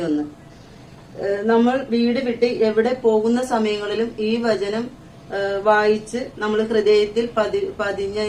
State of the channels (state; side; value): identical; both; correlation 1.00